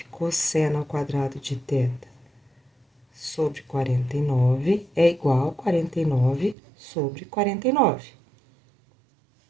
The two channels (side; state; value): left; drops out; at 6.6 s